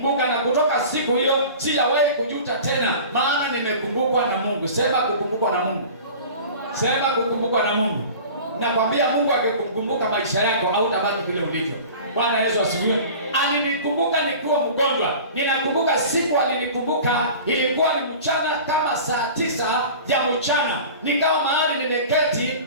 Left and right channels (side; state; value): both; inverted; correlation -0.39